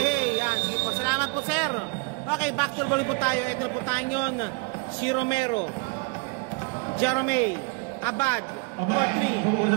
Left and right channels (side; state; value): left; quieter; 33.0 dB